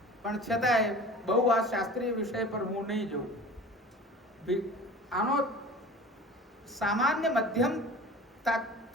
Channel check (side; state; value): both; normal; correlation 0.40